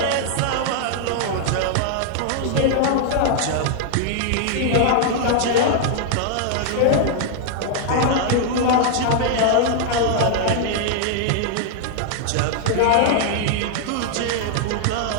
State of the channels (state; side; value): different; both; correlation -0.01